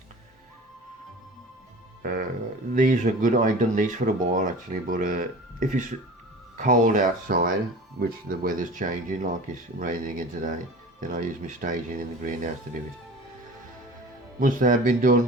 These are good. I've done these for a while actually, but if it's cold outside, which the weather's changing, like it's raining again today, then I use my staging in the greenhouse to do it. Once they have been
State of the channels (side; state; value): both; normal; correlation 0.39